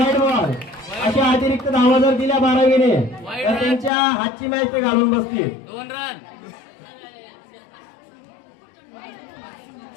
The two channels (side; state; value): right; drops out; at 3.9 s